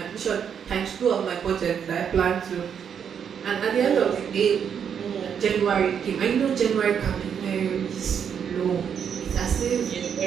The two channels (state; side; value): quieter; left; 7.8 dB